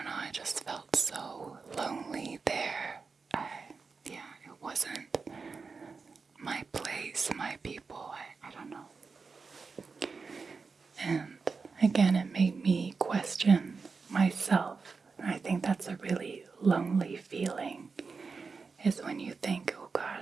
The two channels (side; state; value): left; quieter; 4.7 dB